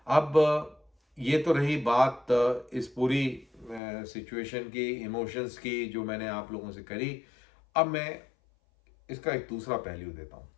अब ये तो रही बात इस पूरी सिचुएशन की, इमोशंस की, जो मैंने आप लोगों से करी। अब मैं इसका एक दूसरा पहलू देता हूँ।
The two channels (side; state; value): right; drops out; at 3.8 s